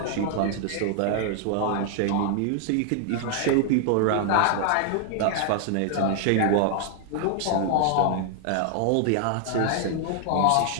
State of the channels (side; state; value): both; different; correlation 0.00